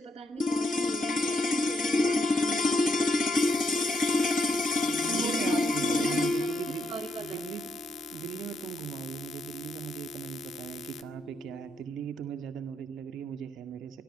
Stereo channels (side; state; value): both; normal; correlation 0.79